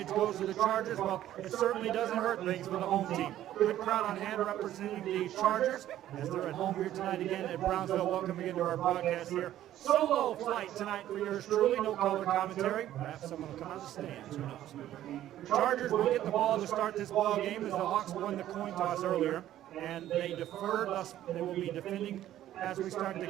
goes to the Chargers? Well, it certainly doesn't hurt things for the home team. Good crowd on hand representing the Chargers as they're at home here tonight again at Brownsville. Welcome again to our broadcast here. Solo flight tonight for yours truly. No color commentary. Perhaps someone will come out of the stands. Who knows? Chargers will get the ball to start this ball game as the Hawks won the coin toss earlier, and they deferred. Thus, they will be defending. As we start the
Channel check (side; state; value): left; quieter; 12.7 dB